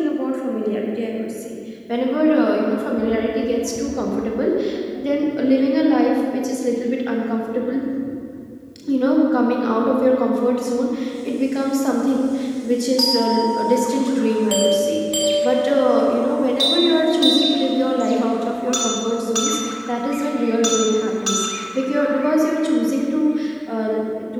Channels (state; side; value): identical; both; correlation 1.00